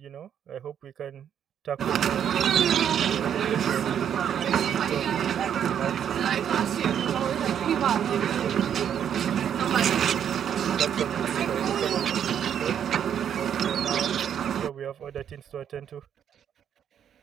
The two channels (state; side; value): quieter; left; 9.0 dB